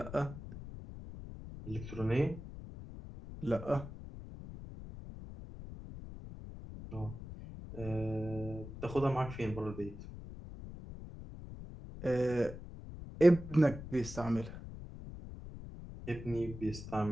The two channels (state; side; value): noise; left; rumble, 12 dB below the sound